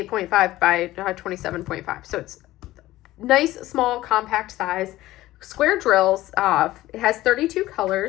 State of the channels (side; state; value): right; quieter; 16.3 dB